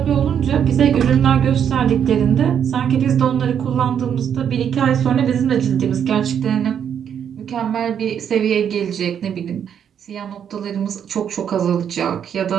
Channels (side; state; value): left; quieter; 8.5 dB